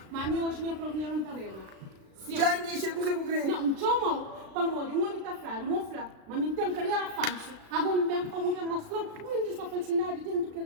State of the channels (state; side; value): late; left; 36 ms